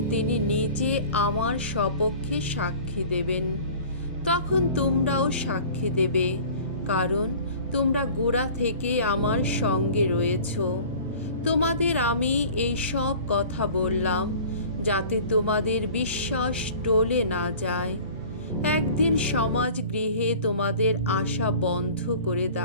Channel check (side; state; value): both; inverted; correlation -0.44